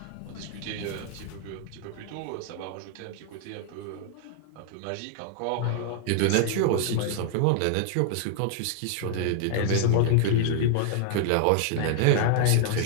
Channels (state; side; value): different; both; correlation 0.00